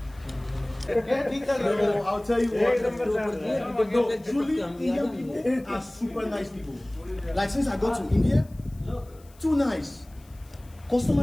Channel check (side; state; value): left; noise; hiss, 28 dB below the sound